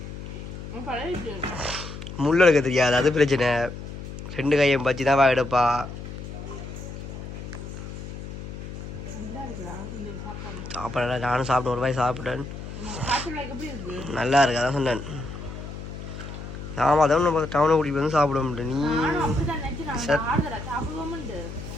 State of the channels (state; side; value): noise; left; hum, 10 dB below the sound